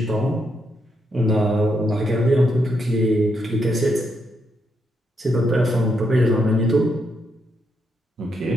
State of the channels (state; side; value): normal; both; correlation 0.79